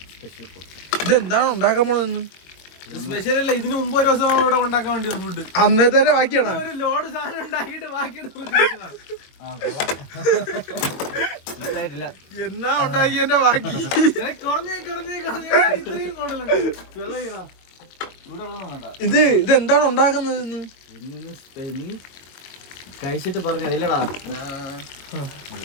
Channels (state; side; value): late; right; 22 ms